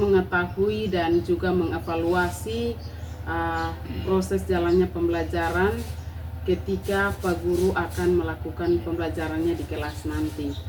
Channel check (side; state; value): both; identical; correlation 1.00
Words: dan juga mengevaluasi proses jalannya pembelajaran ketika Pak Guru akan melakukan pembelajarannya di kelas nanti.